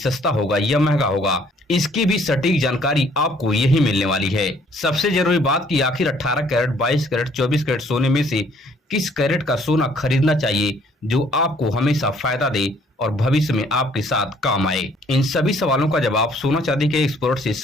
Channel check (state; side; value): normal; both; correlation 0.61